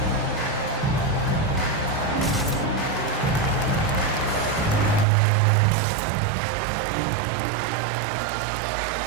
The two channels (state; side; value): drops out; left; at 5.1 s